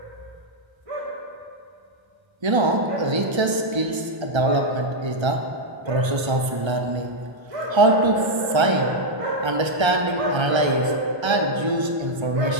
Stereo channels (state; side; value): late; left; 1.3 ms